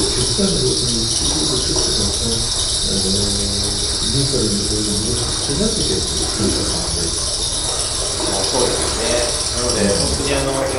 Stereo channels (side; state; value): both; identical; correlation 1.00